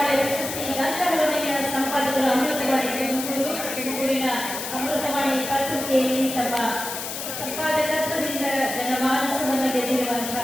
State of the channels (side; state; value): left; noise; hiss, 6 dB below the sound